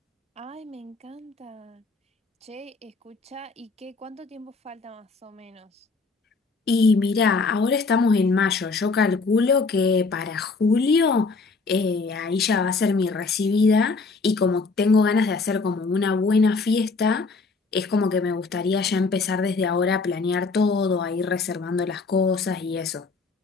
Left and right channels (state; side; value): quieter; right; 4.1 dB